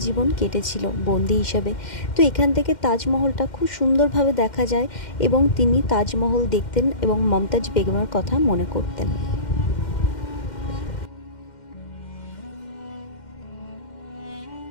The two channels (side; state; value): right; late; 2.1 ms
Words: জীবন কেটেছিল বন্দি হিসাবে। তো এখান থেকে তাজমহলটা খুব সুন্দরভাবে দেখা যায়, এবং তিনি তাজমহল দেখতেন এবং মমতাজ বেগমের কথা মনে করতেন।